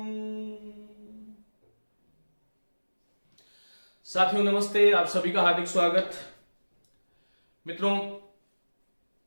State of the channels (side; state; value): both; inverted; correlation -1.00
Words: साथियों नमस्ते, आप सभी का हार्दिक स्वागत। मित्रों,